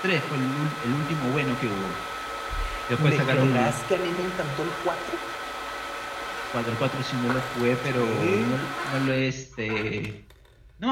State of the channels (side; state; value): both; identical; correlation 1.00